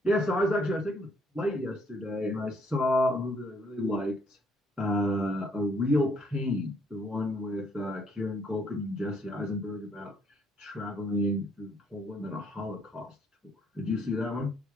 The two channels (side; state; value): both; normal; correlation 0.68